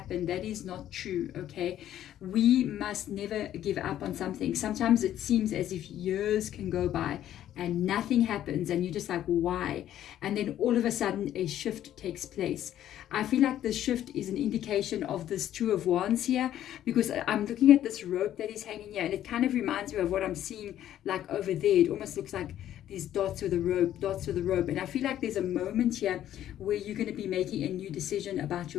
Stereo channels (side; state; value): right; quieter; 11.8 dB